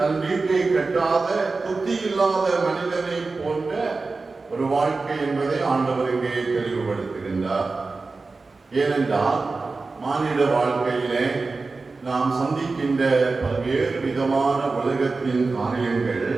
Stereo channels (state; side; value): quieter; left; 3.9 dB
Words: வீட்டை கட்டாத புத்தி இல்லாத மனிதனை போன்ற ஒரு வாழ்க்கை என்பதை ஆண்டவர் இங்கே தெளிவுபடுத்துகின்றார். ஏனென்றால் மானிட வாழ்க்கையிலே நாம் சந்திக்கின்ற பல்வேறு விதமான உலகத்தின் காரியங்கள்